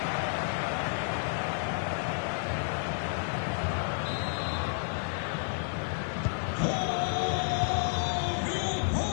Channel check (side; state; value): right; silent; digital silence